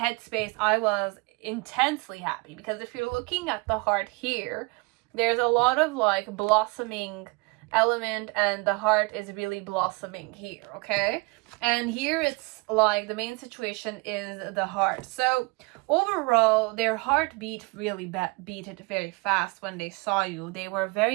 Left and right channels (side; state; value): left; quieter; 27.5 dB